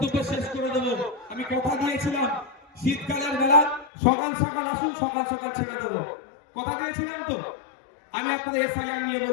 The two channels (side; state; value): right; drops out; at 3.9 s